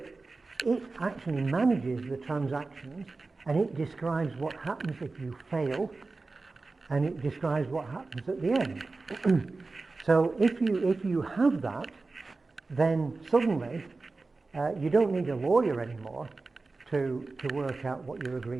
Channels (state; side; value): quieter; left; 3.7 dB